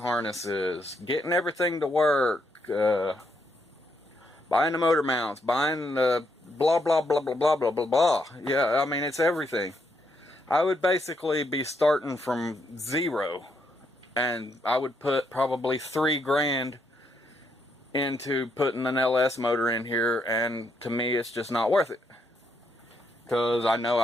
getting everything to work, buying the motor mounts, buying the blah blah blah blah blah blah blah blah. Yeah, I mean, it's everything. I would basically be starting from zero, and I would put probably $3,000 into putting an LS motor in here, and to me it's just not worth it, because I know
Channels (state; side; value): normal; both; correlation 0.76